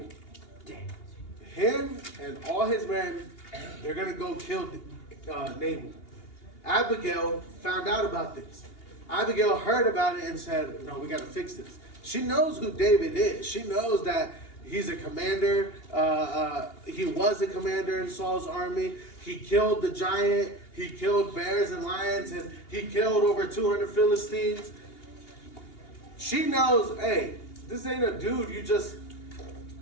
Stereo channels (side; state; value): right; late; 2.8 ms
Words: Him and all his men, they're going to go kill Nabal. Abigail found out about this. Abigail heard about it and said, no, we got to fix this. She knows who David is. She knows that he's a commander. He was a commander in Saul's army. He killed the giant. He killed bears and lions. And he killed over 200 Philistines. She knows, hey, this ain't a dude you just